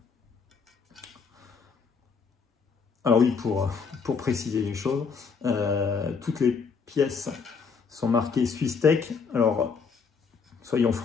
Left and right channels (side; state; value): right; quieter; 5.5 dB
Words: Alors oui, pour préciser les choses, toutes les pièces sont marquées SwissTech. Alors, soyons